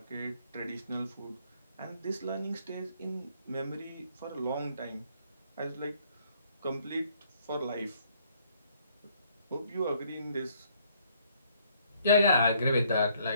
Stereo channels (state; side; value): inverted; both; correlation -0.66